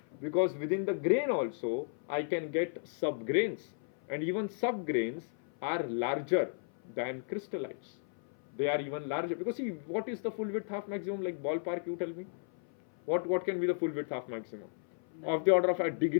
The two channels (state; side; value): silent; right; 55 dB below the other